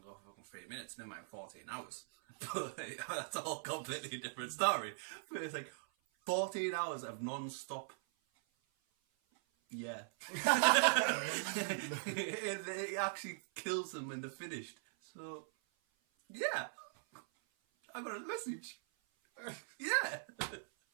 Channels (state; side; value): silent; left; 51 dB below the other